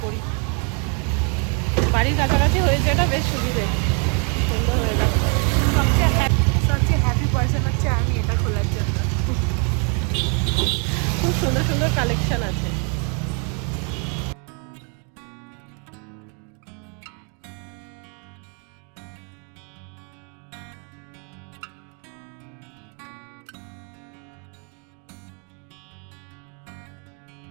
পড়ি। বাড়ির কাছাকাছি হয়েছে, এটা বেশ সুবিধে, সুন্দর হয়ে যাচ্ছে। সবচেয়ে হ্যাপি পার্সন হচ্ছে আমি এটা খোলার জন্য। খুব সুন্দর সুন্দর কালেকশন আছে।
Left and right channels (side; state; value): left; quieter; 37.7 dB